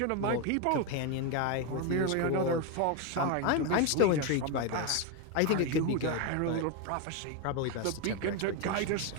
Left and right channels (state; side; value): different; both; correlation 0.02